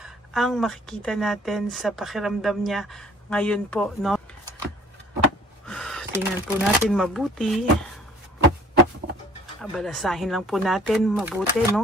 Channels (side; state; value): both; normal; correlation 0.54